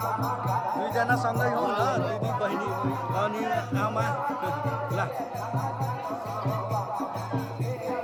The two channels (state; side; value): identical; both; correlation 1.00